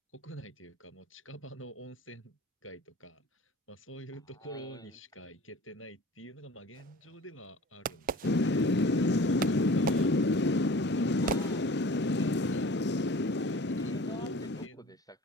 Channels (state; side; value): normal; both; correlation 0.43